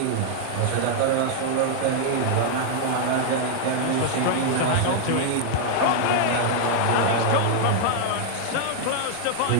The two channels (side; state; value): both; different; correlation 0.00